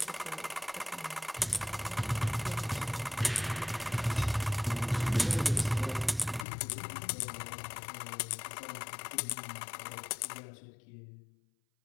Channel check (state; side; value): drops out; right; at 6.5 s